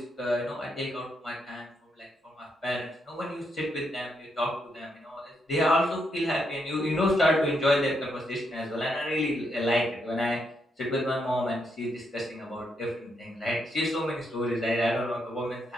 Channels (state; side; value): normal; both; correlation 0.79